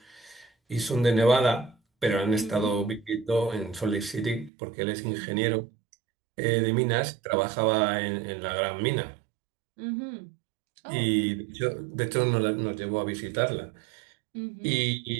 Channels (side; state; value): left; drops out; at 4.5 s